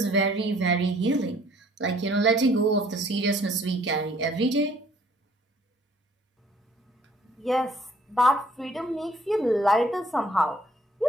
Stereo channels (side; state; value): both; normal; correlation 0.59